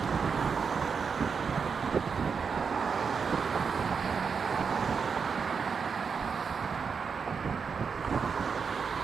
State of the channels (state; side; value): quieter; left; 5.8 dB